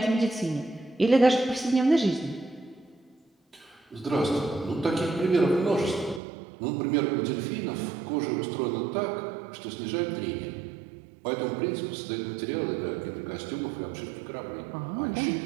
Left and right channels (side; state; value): left; drops out; at 6.2 s